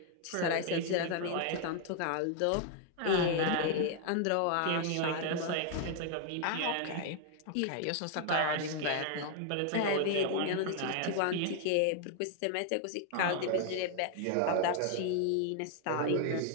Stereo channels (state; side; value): different; both; correlation 0.00